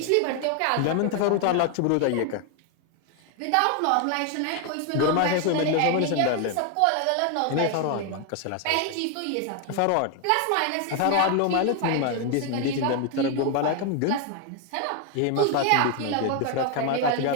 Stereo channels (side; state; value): both; different; correlation 0.01